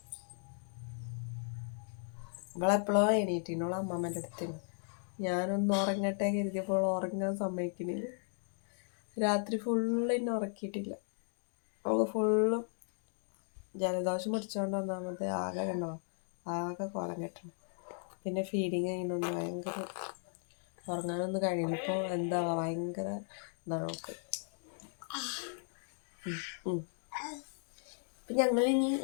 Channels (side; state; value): right; silent; 54 dB below the other